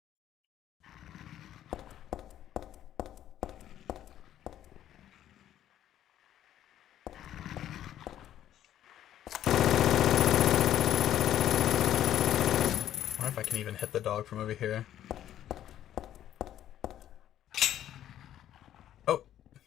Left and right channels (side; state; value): right; quieter; 11.6 dB